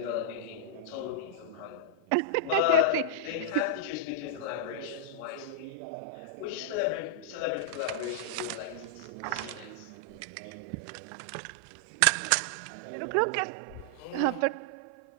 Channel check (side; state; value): both; different; correlation -0.02